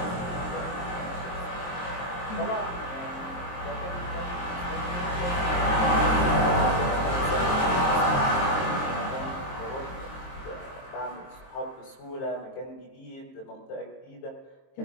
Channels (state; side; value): late; right; 22 ms